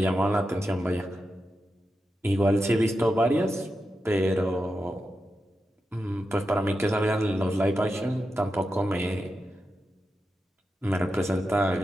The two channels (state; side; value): normal; both; correlation 0.89